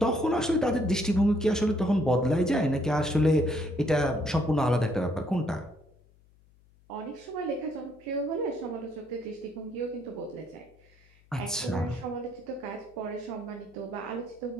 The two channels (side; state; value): left; noise; hum, 30 dB below the sound